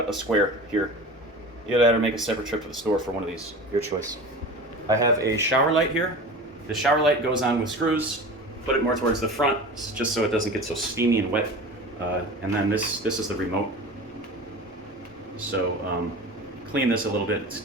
a square here. Either that or make a separate trip to the store for one of these, your choice. I have a shower light here. The shower light goes on with screws. Put it more towards the front, just so it doesn't get so steamy and wet. And then this is the remote. So clean this a little bit, it's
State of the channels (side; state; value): both; normal; correlation 0.34